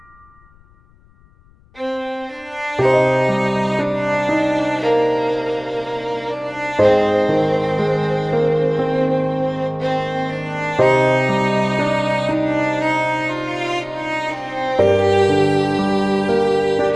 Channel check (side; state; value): left; noise; rumble, 29 dB below the sound